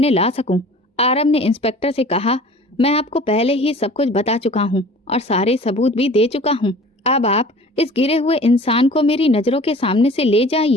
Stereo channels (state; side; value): normal; both; correlation 0.45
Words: ला सकूं। आरब ने इंस्पेक्टर से कहा, मैं आपको पहले ही सब कुछ बता चुका हूं और सारे सबूत भी दे चुका हूं। अब आप इस गिरे हुए इंसान को मेरी नजरों के सामने से ले